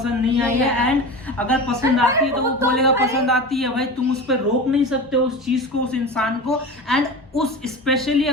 नहीं आई है, एंड अगर पसंद आती है तो वो बोलेगा पसंद आती है। भाई तुम उस पर रोक नहीं सकते उस चीज को, उस इंसान को। एंड उस स्पेशली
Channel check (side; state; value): both; normal; correlation 0.29